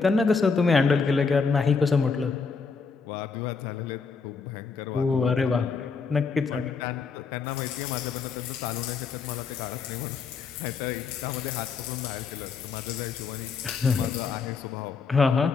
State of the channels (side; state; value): right; quieter; 5.1 dB